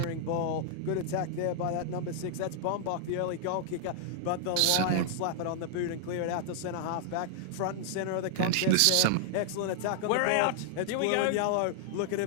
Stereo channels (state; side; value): different; both; correlation -0.01